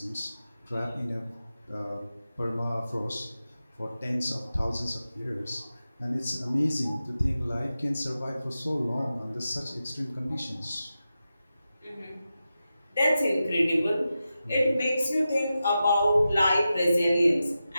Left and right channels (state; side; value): inverted; both; correlation -0.92